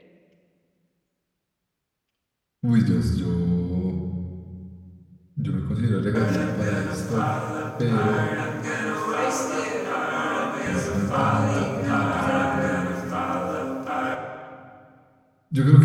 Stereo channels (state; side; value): identical; both; correlation 1.00